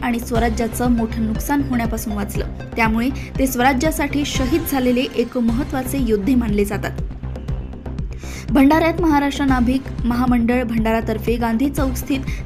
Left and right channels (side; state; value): both; identical; correlation 1.00